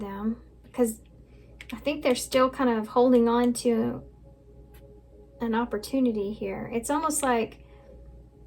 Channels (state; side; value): identical; both; correlation 1.00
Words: because I think they're still kind of holding on to an opportunity here. It's almost like,